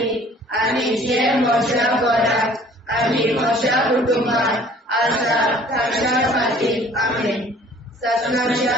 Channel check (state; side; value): normal; both; correlation 0.53